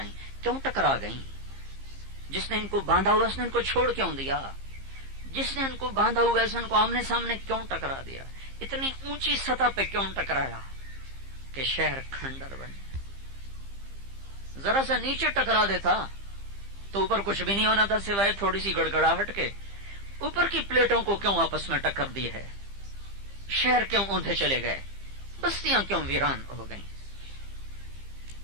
کیوں ٹکرا گئیں؟ جس نے ان کو باندھا ہوا اس نے ان کو چھوڑ کیوں دیا؟ جس نے ان کو باندھا ہوا اس نے ان کو آمنے سامنے کیوں ٹکرا دیا؟ اتنی اونچی سطح پہ کیوں ٹکرایا کہ شہر کھنڈر بنے؟ ذرا سا نیچے ٹکرا دیتا تو اوپر کچھ بھی نہیں ہونا تھا سوائے تھوڑی سی گڑگڑاہٹ کے۔ اوپر کی پلیٹوں کو کیوں آپس میں ٹکر دی ہے؟ شہر کیوں اوندھے چلے گئے؟ بستیاں کیوں ویران ہو گئیں؟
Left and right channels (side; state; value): left; late; 15 ms